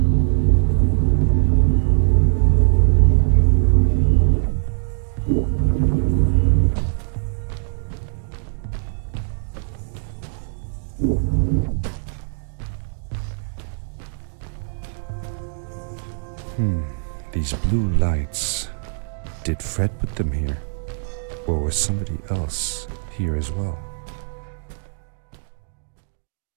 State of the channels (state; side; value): silent; left; digital silence